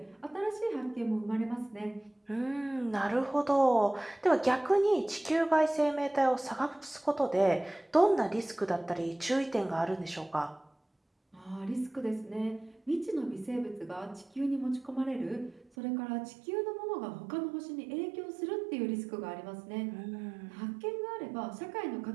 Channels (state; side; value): drops out; left; at 15.7 s